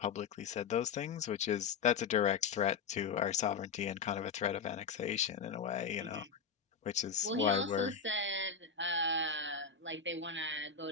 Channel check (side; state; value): right; quieter; 6.0 dB